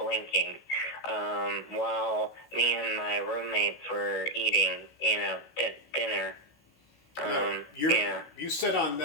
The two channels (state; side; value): late; right; 16 ms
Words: while me and my roommates were eating, you know, dinner. You said on